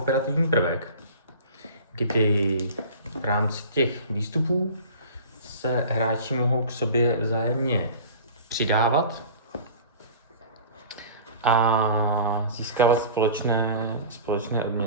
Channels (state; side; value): inverted; both; correlation -0.40